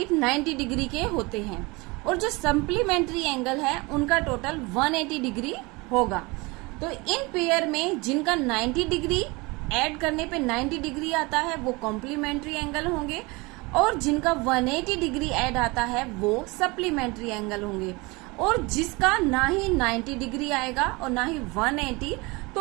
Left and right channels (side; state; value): left; quieter; 25.2 dB